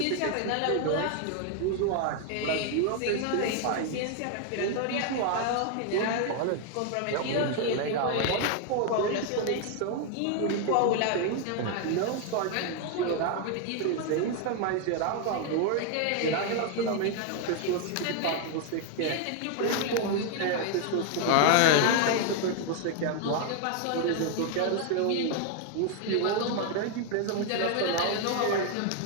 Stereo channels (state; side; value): different; both; correlation 0.00